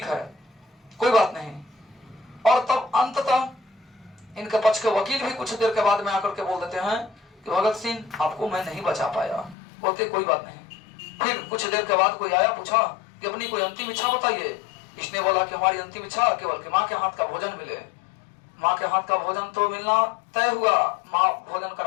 है, कोई बात नहीं। और तब अंततः इनके पक्ष के वकील भी कुछ देर के बाद में आकर के बोल देते हैं कि भगत सिंह आपको मैं नहीं बचा पाया। बोलते कोई बात नहीं। फिर कुछ देर के बाद कोई आया, पूछा कि अपनी कोई अंतिम इच्छा बताइए। इसने बोला कि हमारी अंतिम इच्छा केवल कि माँ के हाथ का भोजन मिले। माँ के हाथ का भोजन तो मिलना तय हुआ, माँ भोजन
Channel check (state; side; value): drops out; right; at 9.6 s